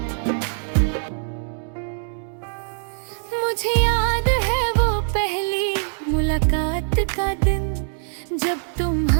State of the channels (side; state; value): left; silent; digital silence